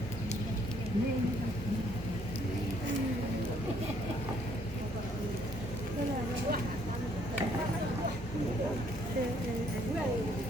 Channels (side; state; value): both; normal; correlation 0.66